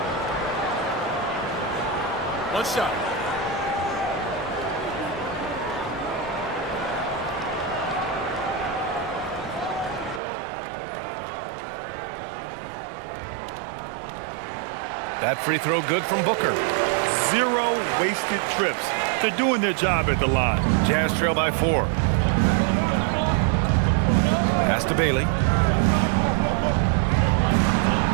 One shot. That free throw good from Booker. 0 wasted trips. They're doing their job at the line. Jazz trail by 4. Pass to Bailey.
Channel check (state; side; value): drops out; left; at 10.2 s